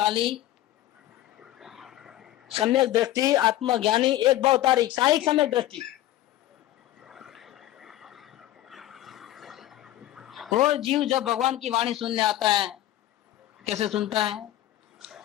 सम्यक दृष्टि, आत्मज्ञानी, एक भवतारी, साहिक सम्यक दृष्टि। वो जीव जब भगवान की वाणी सुनने आता है, कैसे सुनता है?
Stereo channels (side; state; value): right; quieter; 14.3 dB